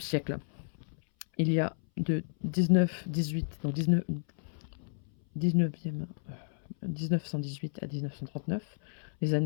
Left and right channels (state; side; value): silent; right; 57 dB below the other